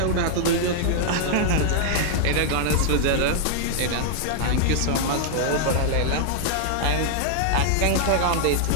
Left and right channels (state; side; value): different; both; correlation -0.01